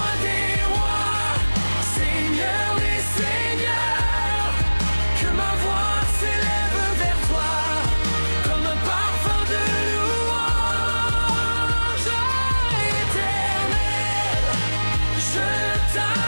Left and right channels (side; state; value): both; inverted; correlation -1.00